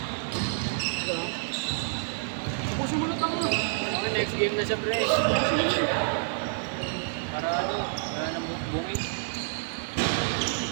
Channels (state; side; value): silent; left; digital silence